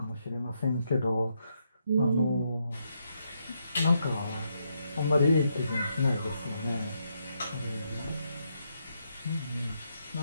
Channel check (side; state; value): both; inverted; correlation -0.79